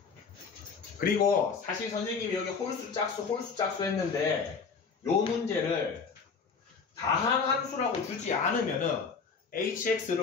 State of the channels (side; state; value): right; quieter; 5.4 dB